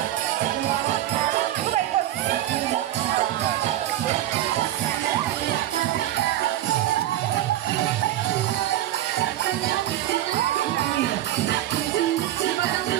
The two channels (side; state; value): left; quieter; 13.7 dB